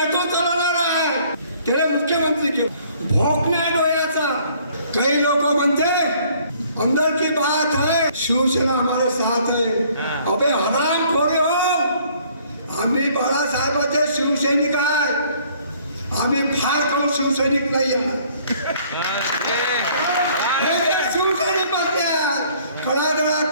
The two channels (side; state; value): both; inverted; correlation -0.60